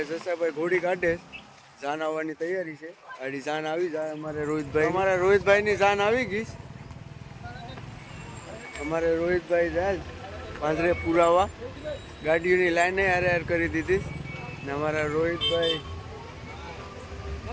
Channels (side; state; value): both; identical; correlation 1.00